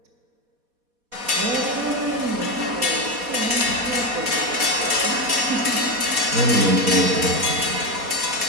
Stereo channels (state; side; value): late; left; 4.2 ms